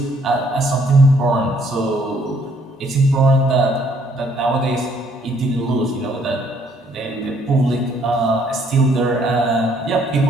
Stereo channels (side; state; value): both; normal; correlation 0.65